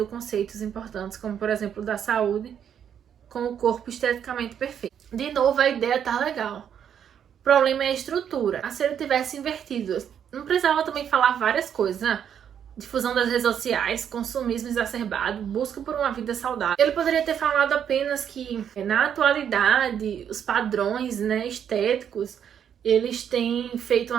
conceitos importantes, como por exemplo da saúde, com o corpo esteticamente perfeito. De novo, a ideia tá legal. O problema é a estrutura. Se ele tivesse invertido, não precisava também falar várias coisas, né? Difusão das redes sociais, consumismo exacerbado, busca por uma vida saudável. Ele poderia ter falado apenas que, na atualidade, os padrões, né, estéticos, eles têm feito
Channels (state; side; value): quieter; left; 8.7 dB